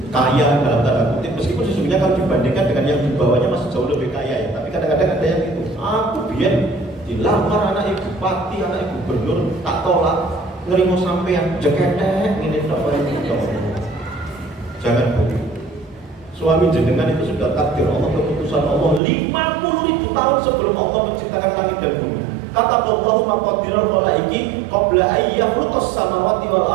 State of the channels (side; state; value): left; drops out; at 19.0 s